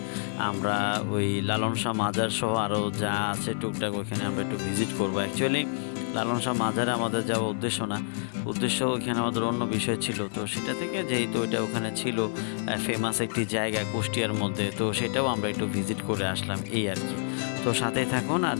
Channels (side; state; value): right; silent; digital silence